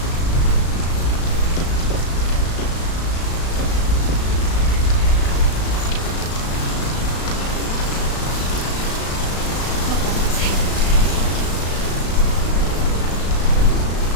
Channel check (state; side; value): late; right; 35 ms